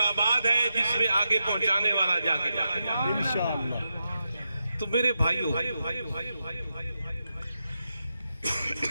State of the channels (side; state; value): both; inverted; correlation -0.88